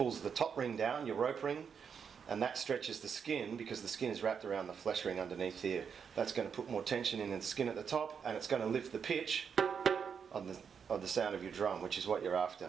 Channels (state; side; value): quieter; left; 6.8 dB